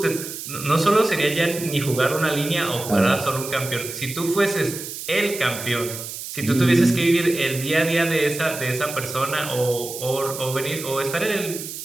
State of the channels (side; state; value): right; noise; hiss, 9 dB below the sound